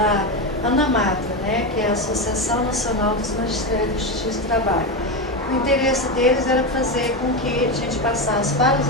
ANAMATRA, né, que é a Associação Nacional dos Magistrados de Justiça do Trabalho. O interesse deles era fazer com que a gente passasse para os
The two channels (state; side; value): normal; both; correlation 0.14